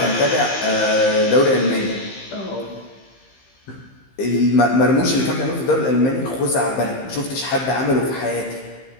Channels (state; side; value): late; right; 15 ms